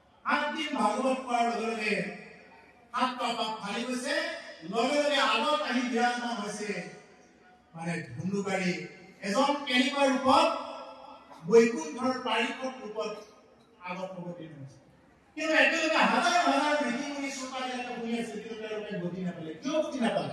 7 দিন ভাগৱত কোৱাৰ লগে লগে 7টা পাত ফালি গৈছে লগে লগে আগত আহি বিৰাজমান হৈছে মানে ধুন্দুকাৰী এজন কেনেকুৱা ৰূপত বৈকুণ্ঠৰ পাৰিষদ ৰূপত আগত অৱতীৰ্ণ হৈছে। কিন্তু একেলগে হাজাৰ হাজাৰ ঋষি-মুনি শ্ৰোতাবিলাকে শুনি আছে, কিন্তু তেওঁলোকে গতি নাপালে। কিয় গতি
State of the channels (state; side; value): identical; both; correlation 1.00